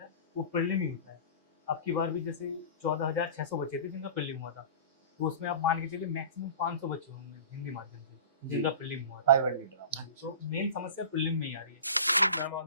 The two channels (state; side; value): inverted; both; correlation -0.36